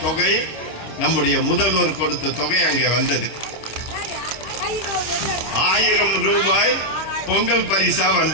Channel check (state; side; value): late; right; 25 ms